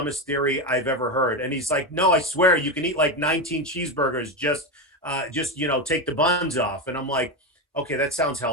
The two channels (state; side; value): normal; both; correlation 0.14